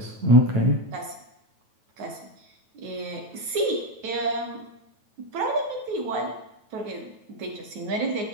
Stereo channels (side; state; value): left; late; 9.1 ms